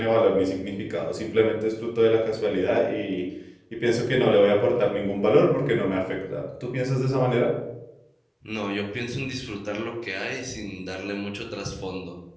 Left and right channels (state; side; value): identical; both; correlation 1.00